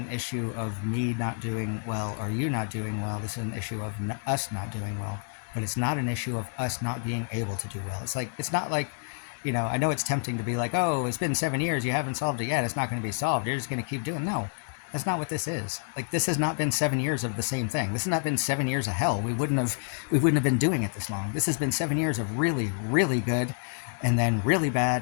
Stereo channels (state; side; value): silent; right; digital silence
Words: issue of me not doing well or you not doing well. This is an issue of us not doing well. But it's not an issue of us not being able to do well. It's not like, I know it's tempting to be like, oh, it's been 7 years, you haven't solved it yet, it's not going to be solved, you're just going to keep doing. No, that's not what this is. Like, this has not been 7 years of the same thing. This has not been 7 years of hell. We wouldn't have been doing it this long. This has been 7 years of really, really good, and then really